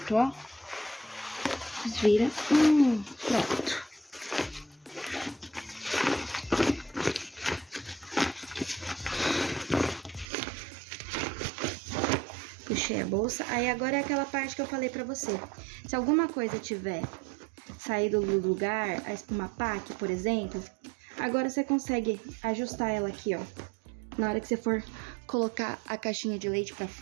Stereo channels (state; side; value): drops out; left; at 10.2 s